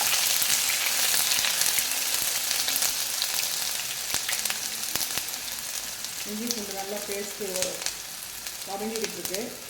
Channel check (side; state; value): both; identical; correlation 1.00